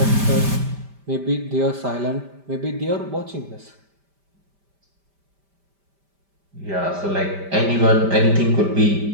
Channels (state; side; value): late; left; 5.1 ms